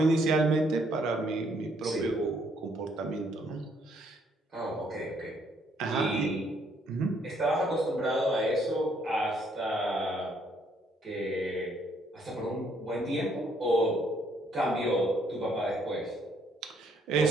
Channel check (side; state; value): both; normal; correlation 0.68